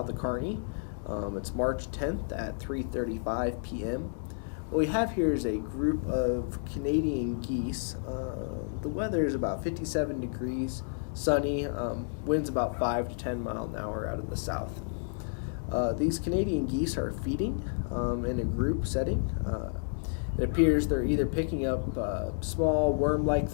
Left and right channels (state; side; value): silent; right; digital silence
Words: of Kearney. It's March 10th at 3:35 p.m. What we have here is a group of Canadian geese. The weather is about 57 degrees, sunny, winds about 5 to 10 miles an hour out of the south. These Canadian geese are feeding in a group setting. It appears they're either picking up small worm-like